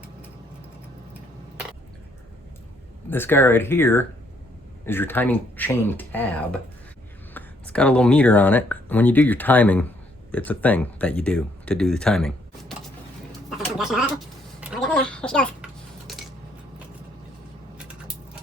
This guy right here is your timing chain tab. It's got a little meter on it. When you do your timing, it's a thing that you do to do the timing.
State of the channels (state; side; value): normal; both; correlation 0.69